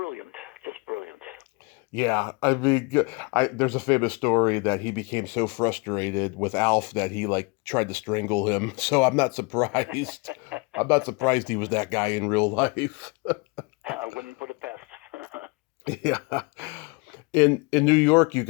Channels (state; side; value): quieter; right; 29.5 dB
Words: just brilliant. Yeah, I mean, there's a famous story that he became so frustrated with Alf that he tried to strangle him. So I'm not surprised. I'm not surprised he was that guy in real life. I wouldn't put it past. Yeah. In New York, you